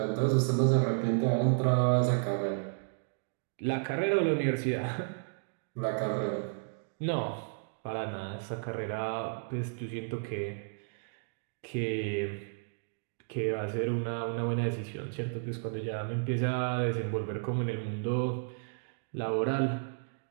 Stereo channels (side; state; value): left; silent; digital silence